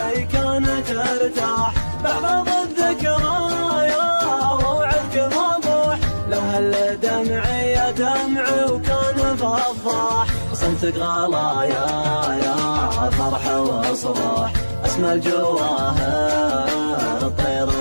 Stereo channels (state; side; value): inverted; both; correlation -1.00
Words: كانت ترتاح. بعض الذكرايا ووعدك مبوح. لو هل دمعي دمعي وكان فضاح. صمتك غلايا يا فرح وصباح. اسمى الجواهر طير